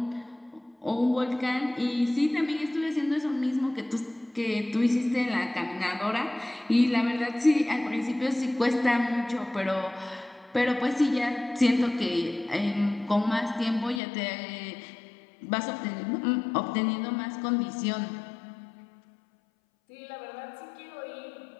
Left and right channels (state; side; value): drops out; right; at 14.0 s